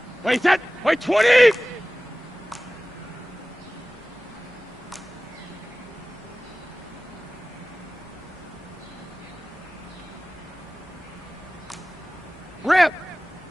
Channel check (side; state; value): both; normal; correlation 0.97